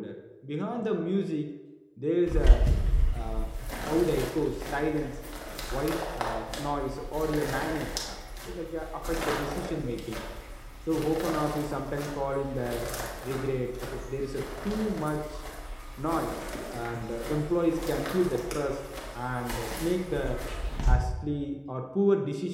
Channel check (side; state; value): both; identical; correlation 1.00